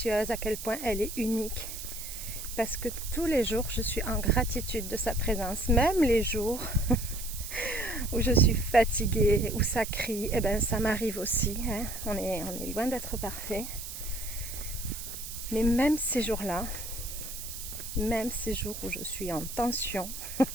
à quel point elle est unique. Parce que tous les jours, je suis en gratitude de sa présence. Même les jours où je suis fatiguée, où ça crie, eh ben ça m'arrive aussi. Hein. On est loin d'être parfait. Mais même ces jours-là, même ces jours où je suis en tension,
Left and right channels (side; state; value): right; noise; hiss, 9 dB below the sound